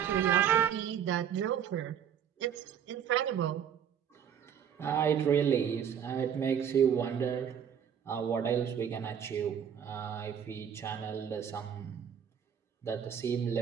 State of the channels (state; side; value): quieter; left; 8.5 dB